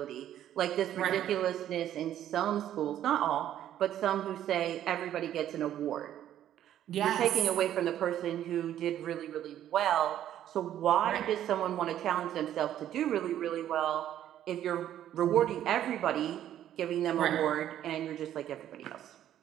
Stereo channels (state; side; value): quieter; left; 11.4 dB